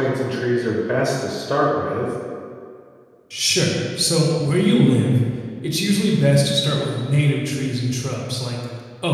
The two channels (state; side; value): identical; both; correlation 1.00